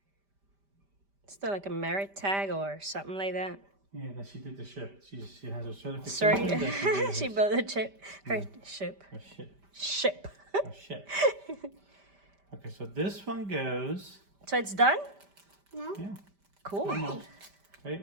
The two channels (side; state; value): left; late; 5.1 ms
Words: Still like a merit tag or something like that. Yeah, that she did the ship. She has a certification. Sorry, that she did she her- built a ship. Her ship. her ship. Ship. A ship. Okay, so this one goes. So it's done? No? Yeah. Cool. Almost. Wait.